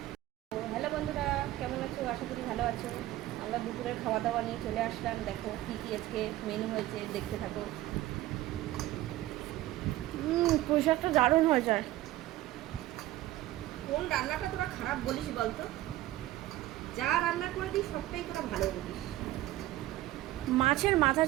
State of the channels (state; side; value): quieter; left; 15.7 dB